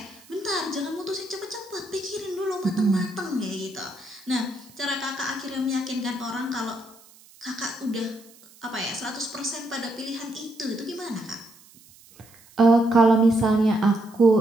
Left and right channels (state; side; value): noise; right; hiss, 25 dB below the sound